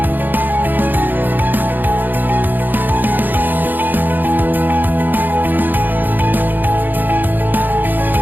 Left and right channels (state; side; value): late; left; 0.088 ms